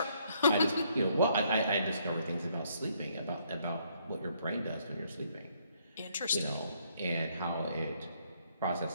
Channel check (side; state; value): both; inverted; correlation -0.69